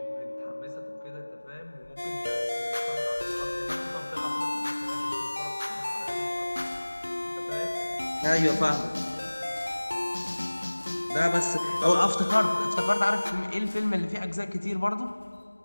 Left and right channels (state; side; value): inverted; both; correlation -1.00